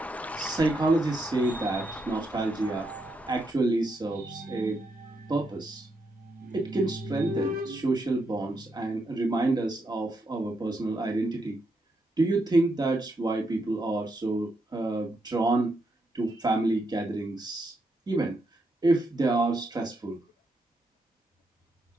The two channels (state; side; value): normal; both; correlation 0.80